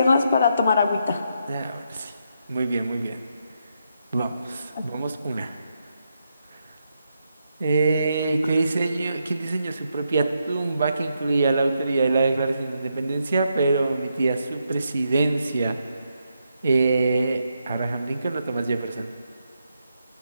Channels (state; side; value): inverted; both; correlation -0.81